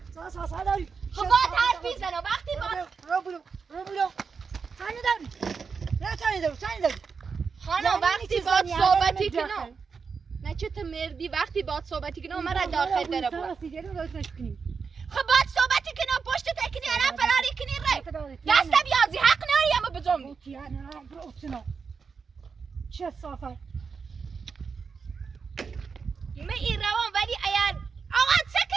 ساسا داری خب باید حرفی زنم وقتی باید خانم وقتی باید صحبتی کنم نه چه تو مردی وقتی باید صحبتی کنم مرا داخل داره بود خب باید صحبتی کنم پشت تکنی الان فراری کنی ره دست بیازی حق ناری اما بزنبی چه صافه من این روان ولی اگر آقا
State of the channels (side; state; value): left; quieter; 5.5 dB